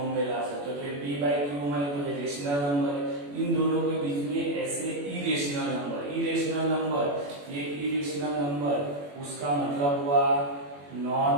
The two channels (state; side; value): late; left; 21 ms